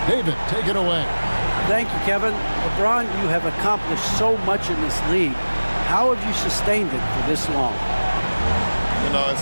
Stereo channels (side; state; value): both; inverted; correlation -1.00